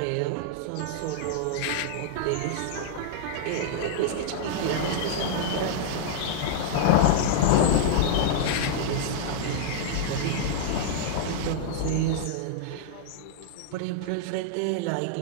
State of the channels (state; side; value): different; both; correlation -0.01